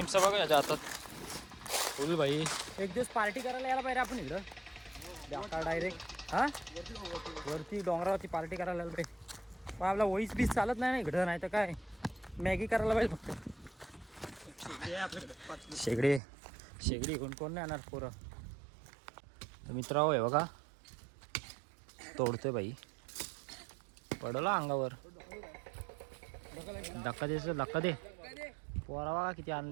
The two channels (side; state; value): left; drops out; at 16.2 s